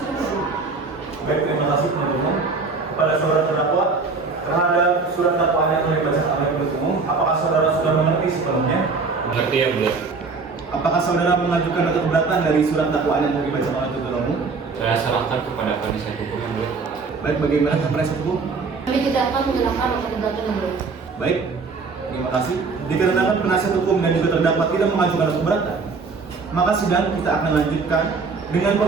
Baik, terima kasih penuntut umum. Kepada saudara terdakwa terhadap surat dakwaan yang telah dibacakan oleh penuntut umum, apakah saudara sudah mengerti sepenuhnya? Mengerti yang mulia. Apakah saudara mengajukan nota keberatan dari surat dakwaan yang telah dibacakan oleh penuntut umum? Saya serahkan kepada penasihat hukum yang mulia. Baik, bagaimana penasihat hukum? Kami tidak akan menyerahkan nota keberatan yang mulia. Baik, terima kasih. Dikarenakan penasihat hukum dan juga terdakwa tidak mengajukan nota keberatan, maka sidang kita akan lanjutkan dengan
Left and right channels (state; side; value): quieter; left; 4.4 dB